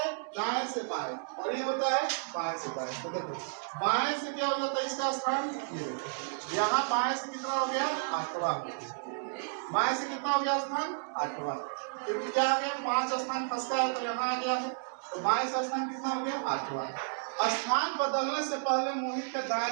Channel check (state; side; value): silent; left; digital silence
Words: दाएं से बाएं और ये होता है बाएं से दाएं, तो देखो बाएं से क्या हो जाता है इसका स्थान, ये देखो यहाँ बाएं से कितना हो गया 8वां हो गया, बाएं से कितना हो गया स्थान 8वां, क्योंकि क्या आ गया 5 स्थान खसका है तो यहाँ आ गया है, तो बाएं से स्थान कितना हो गया 8वां। स्थान बदलने से पहले मोहित का दाएं